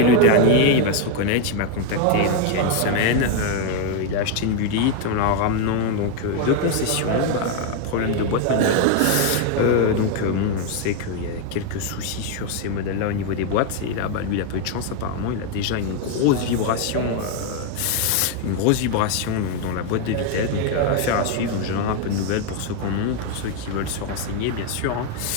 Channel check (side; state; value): both; different; correlation 0.01